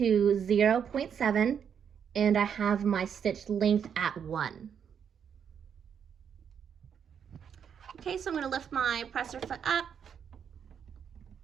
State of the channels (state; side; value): quieter; left; 7.7 dB